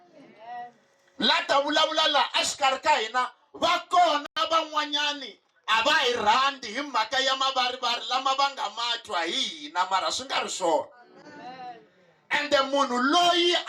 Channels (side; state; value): both; identical; correlation 1.00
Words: La ta vulavula laha exikarhi ka hina, va kona van'wanyani a va hi rhandzi hi mhaka ya mavarivari lama va nga ma twa hi hina, mara swi nga ri swona. Ende munhu loyi